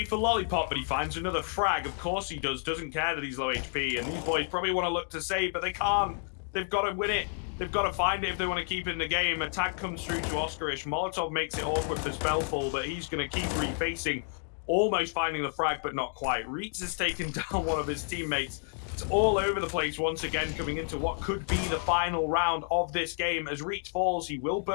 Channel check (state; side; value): silent; right; 58 dB below the other